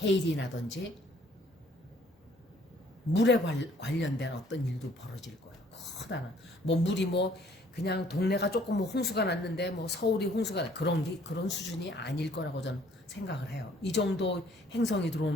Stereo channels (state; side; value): normal; both; correlation 0.60